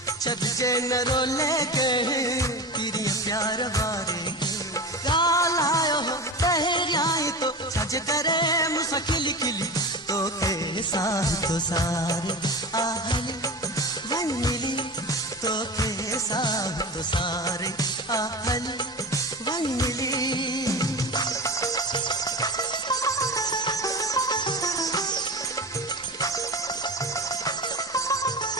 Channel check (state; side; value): normal; both; correlation 0.28